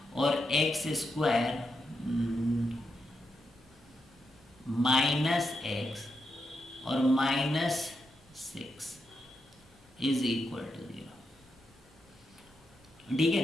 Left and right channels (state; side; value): normal; both; correlation 0.85